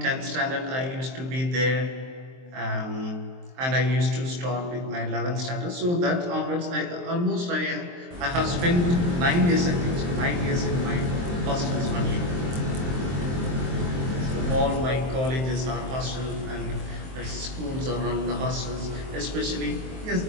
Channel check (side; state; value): left; late; 23 ms